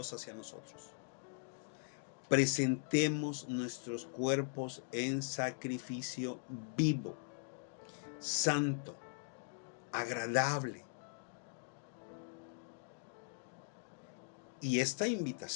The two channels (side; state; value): right; silent; digital silence